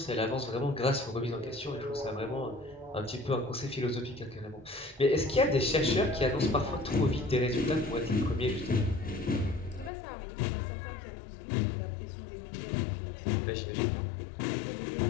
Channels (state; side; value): drops out; right; at 9.9 s